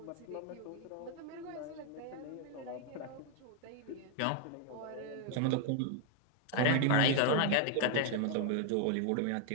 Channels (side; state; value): both; different; correlation 0.01